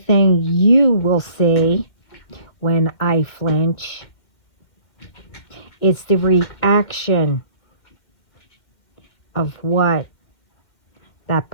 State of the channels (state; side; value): late; right; 2.1 ms